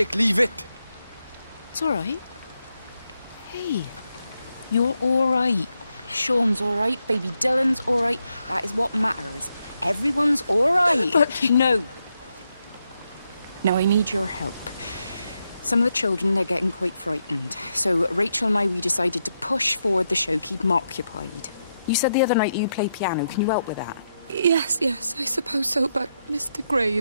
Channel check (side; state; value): both; inverted; correlation -0.83